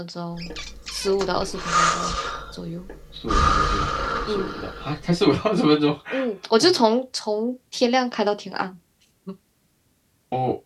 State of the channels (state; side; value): identical; both; correlation 1.00